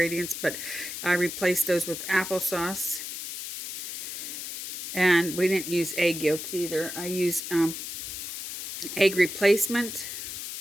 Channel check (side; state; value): left; noise; hiss, 7 dB below the sound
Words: but I replaced those with applesauce, and we didn't use egg yolks either. I use egg replacement,